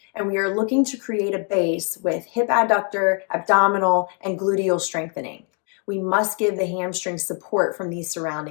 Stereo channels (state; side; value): quieter; right; 38.5 dB